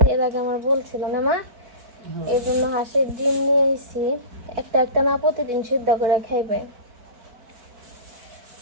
এর আগে আমার বলছিল না মা, এই জন্য হাঁসের ডিম নিয়ে আইছি। একটা একটা না প্রতিদিন সিদ্ধ করে খাইবে।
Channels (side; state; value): left; late; 4.5 ms